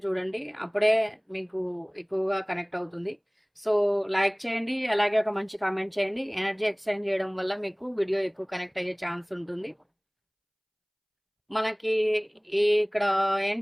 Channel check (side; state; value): both; identical; correlation 1.00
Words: చూడండి. అప్పుడే మీకు ఎక్కువగా కనెక్ట్ అవుతుంది. సో లైక్ చేయండి, అలాగే ఒక మంచి కామెంట్ చేయండి. ఎనర్జీ ఎక్స్చేంజ్ చేయడం వల్ల మీకు వీడియో ఎక్కువ కనెక్ట్ అయ్యే ఛాన్స్ ఉంటుంది. మనకి ఇక్కడ